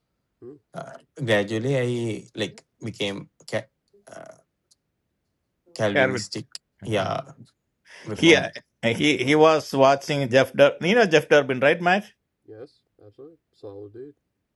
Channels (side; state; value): both; identical; correlation 1.00